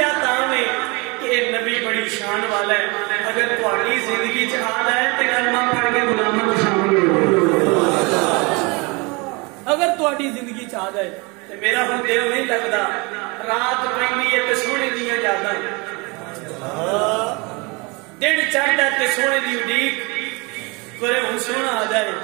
تاں میں کہ نبی بڑی شان والا ہے، اگر تہاڈی زندگی چ آ جائے تے کلمہ پڑھ کے غلاماں وچ شامل ہو اگر تہاڈی زندگی چ آ جائے تے میرا ہن دل نہیں لگدا، رات پیندی ہے تے سونے دیاں یاداں، دن چڑھدا تے سونے دی اڈیک، کرے ہن سونا آ جائے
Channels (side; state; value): left; quieter; 27.9 dB